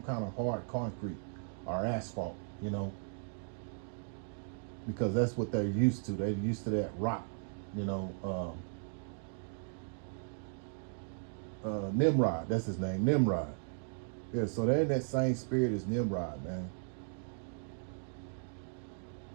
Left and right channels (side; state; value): left; silent; digital silence